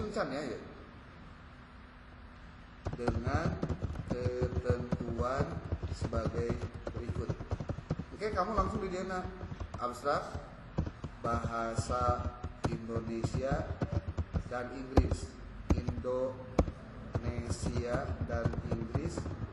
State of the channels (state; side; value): identical; both; correlation 1.00